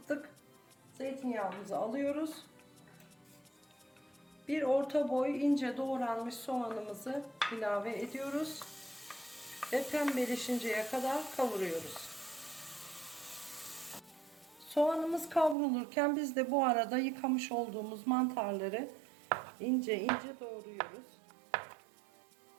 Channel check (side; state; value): left; drops out; at 15.6 s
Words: Zeytinyağımızı alıyoruz. Bir orta boy ince doğranmış soğanımızı ilave ediyoruz. Ve pembeleşinceye kadar kavuruyoruz. Soğanımız kavrulurken biz de bu arada yıkamış olduğumuz mantarları ince ince doğruyoruz.